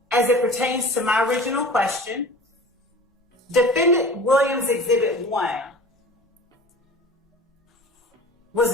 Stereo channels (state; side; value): normal; both; correlation 0.40